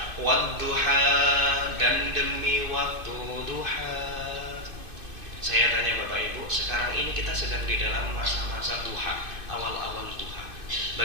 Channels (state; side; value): late; left; 2.5 ms